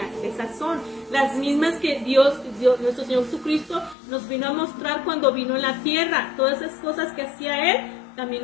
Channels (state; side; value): drops out; right; at 4.0 s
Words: Esas son las mismas que Dios, nuestro Señor Jesucristo, nos vino a mostrar cuando vino en la tierra. Todas esas cosas que hacía Él, también